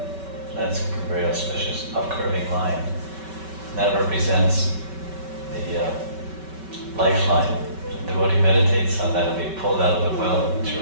That's a very auspicious upcurving line. And that represents the lifeline. The devotee meditates on that and be pulled out of the well of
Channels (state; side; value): late; left; 5.2 ms